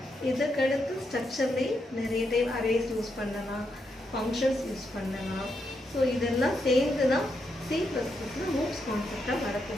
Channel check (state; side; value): normal; both; correlation 0.81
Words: இதுக்கடுத்து ஸ்ட்ரக்சர்லேயே நிறைய டைப் அரேஸ் யூஸ் பண்ணலாம், ஃபங்க்ஷன்ஸ் யூஸ் பண்ணலாம். ஸோ இதெல்லாம் சேர்ந்து தான் C++ல மூவ்ஸ் கான்செப்டாக